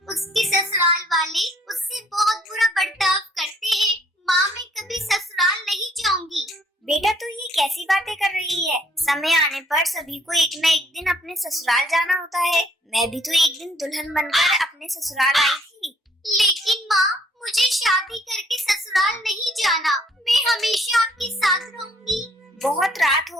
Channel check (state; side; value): normal; both; correlation 0.63